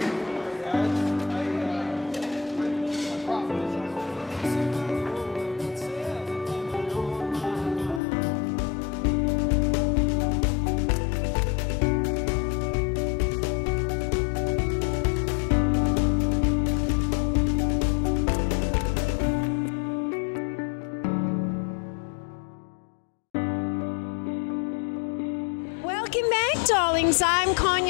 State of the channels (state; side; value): drops out; right; at 8.0 s